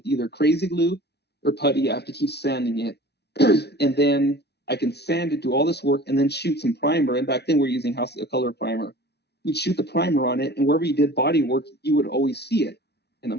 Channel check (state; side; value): late; right; 0.49 ms